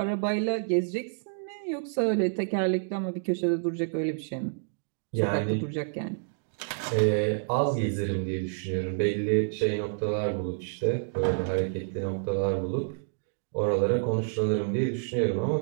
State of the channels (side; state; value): left; silent; digital silence